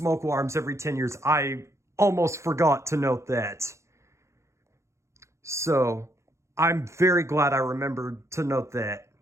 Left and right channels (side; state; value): left; late; 0.14 ms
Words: alarms every 10 years. I almost forgot to note that. So, I'm very glad I remembered to note that,